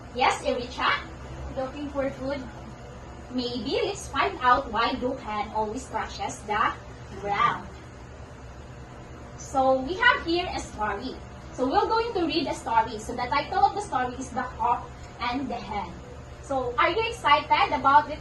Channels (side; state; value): both; identical; correlation 1.00